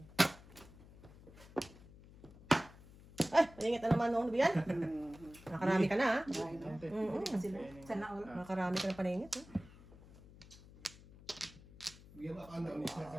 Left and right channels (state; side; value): noise; left; hum, 20 dB below the sound